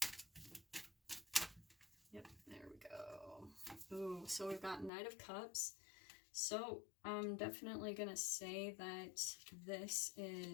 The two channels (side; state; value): right; drops out; at 4.9 s